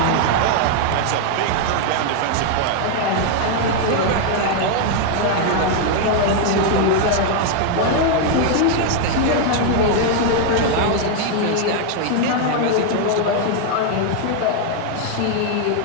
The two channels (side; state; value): both; different; correlation 0.00